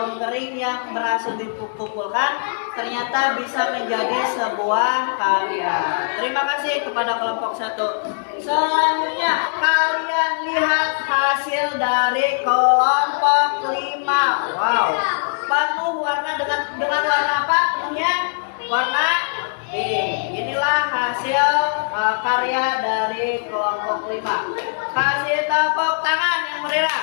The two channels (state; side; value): silent; right; digital silence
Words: kering yang berhasil dikumpulkan ternyata bisa menjadi sebuah karya. Terima kasih kepada kelompok 1. Selanjutnya kalian lihat hasil dari kelompok 5. Wow, penuh warna dengan warna apa? Ya, warna pink. Inilah hasil karya dari kelompok 5. Kasih tepuk tangan yang meriah.